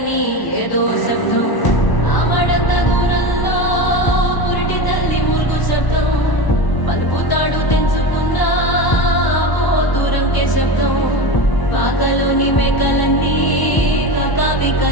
ఏదో శబ్దం. ఆమడంత దూరంలో పురిటి తల్లి మూల్గు శబ్దం, పలుకుతాడు తెంచుకున్న ఓ దూరంకే శబ్దం. పాకలోని మేకలన్నీ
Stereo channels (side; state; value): right; late; 1.0 ms